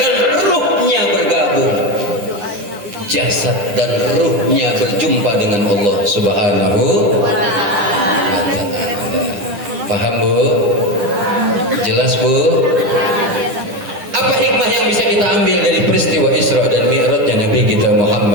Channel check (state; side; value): late; left; 10 ms